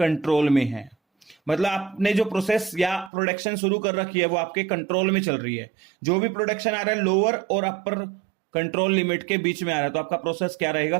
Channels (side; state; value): left; drops out; at 3.1 s